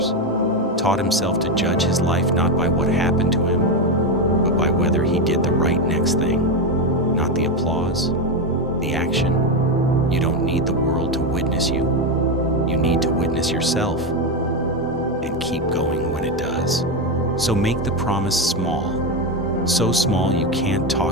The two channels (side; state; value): both; normal; correlation 0.10